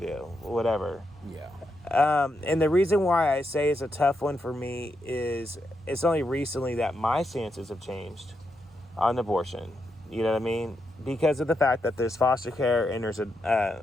whatever. Yeah. And the reason why I say it's a tough one for me is it's only recently that my stances have changed on abortion. You know what I mean? Because of the fact that there's foster care and there's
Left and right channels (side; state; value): both; normal; correlation 0.83